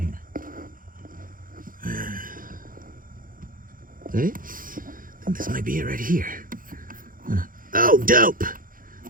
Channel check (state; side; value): late; left; 0.40 ms